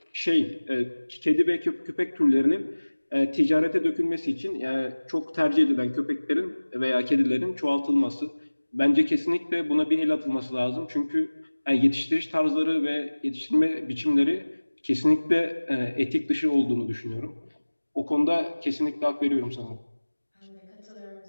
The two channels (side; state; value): both; inverted; correlation -1.00